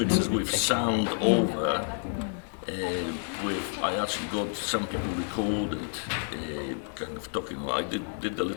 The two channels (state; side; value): silent; right; 58 dB below the other